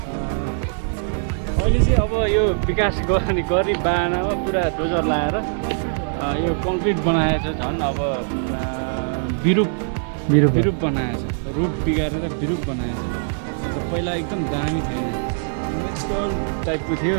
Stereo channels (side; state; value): left; silent; 58 dB below the other